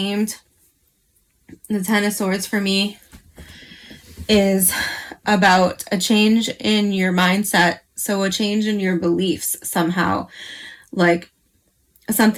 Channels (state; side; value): identical; both; correlation 1.00